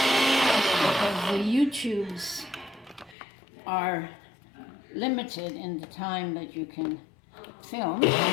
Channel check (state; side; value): drops out; right; at 3.2 s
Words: because the YouTubes are limited in the time that you can film. But